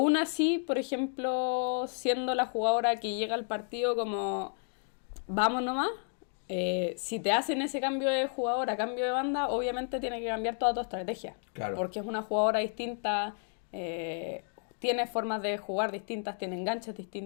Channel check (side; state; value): right; silent; 57 dB below the other